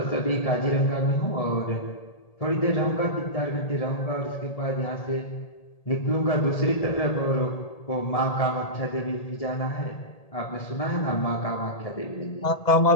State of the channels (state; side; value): late; right; 1.8 ms